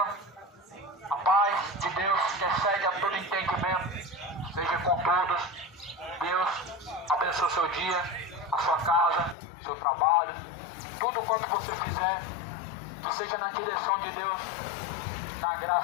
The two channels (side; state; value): right; drops out; at 9.3 s